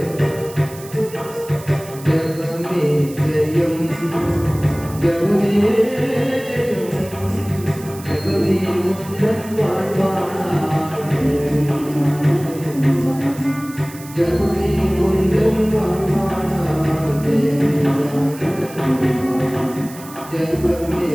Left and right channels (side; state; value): right; noise; hiss, 18 dB below the sound